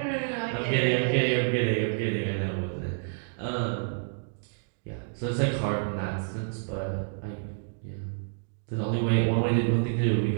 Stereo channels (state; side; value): silent; left; digital silence